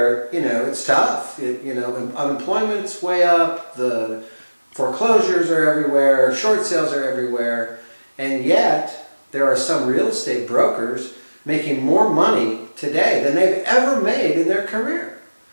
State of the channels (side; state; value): both; inverted; correlation -1.00